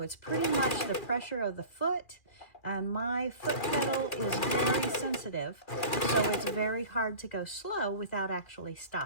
it's pretty much the pressure of the foot, and my foot pedal is very sensitive, so it's very hard to go slow without actually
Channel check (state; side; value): late; right; 2.4 ms